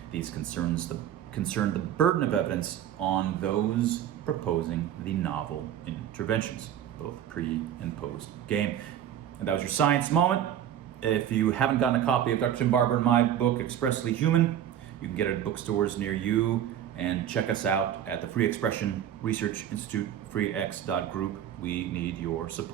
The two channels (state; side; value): quieter; left; 10.5 dB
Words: These concern the burden of evidence on those proposing the novel interventions, both pre and post game. And that was your science moment. If you haven't gotten a copy of Dr. Tim Barber and my book, Expressly Human, you can get it at bookstores near you, and check us out at the Free Expression Research Institute, freex.group. We need your